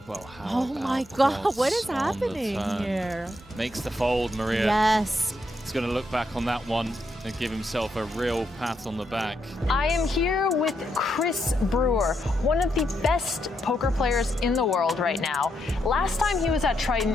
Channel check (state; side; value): normal; both; correlation 0.79